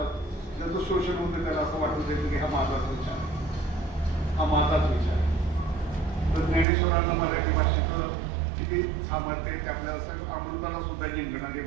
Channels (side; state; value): left; drops out; at 6.7 s